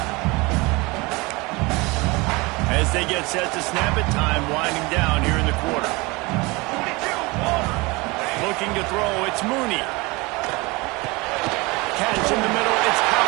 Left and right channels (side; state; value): left; quieter; 24.7 dB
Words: As they get set to snap it, time winding down here in the quarter. Looking to throw, it's Mooney. Catch in the middle, it's